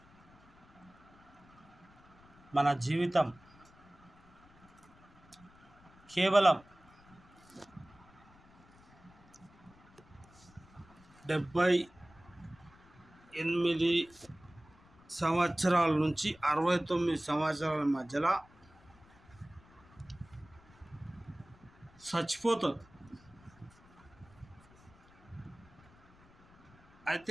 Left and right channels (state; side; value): noise; left; rumble, 26 dB below the sound